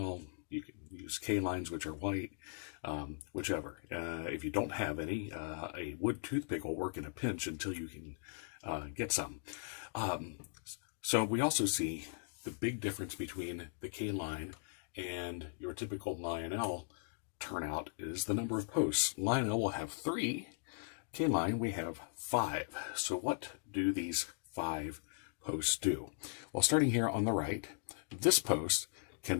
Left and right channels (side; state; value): right; silent; digital silence